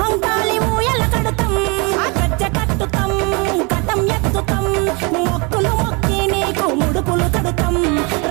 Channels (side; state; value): left; quieter; 30.1 dB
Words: ఊయల కడుతాం, గజ్జ కట్టుతాం కటం ఎత్తుతాం, మొక్కులు మొక్కి నీకు ముడుపులు కడుతాం,